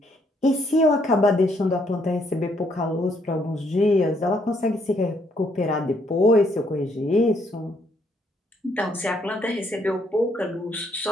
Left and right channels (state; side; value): normal; both; correlation 0.71